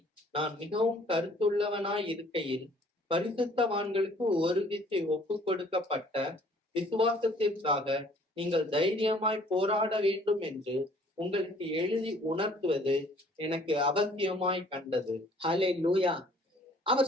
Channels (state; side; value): normal; both; correlation 0.57